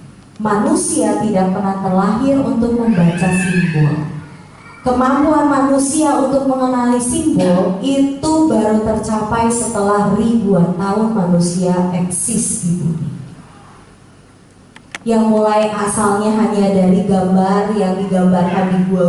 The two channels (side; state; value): both; identical; correlation 1.00